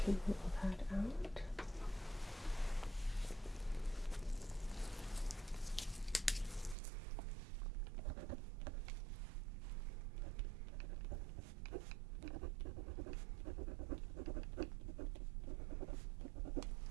can rule that out.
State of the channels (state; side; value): drops out; left; at 6.8 s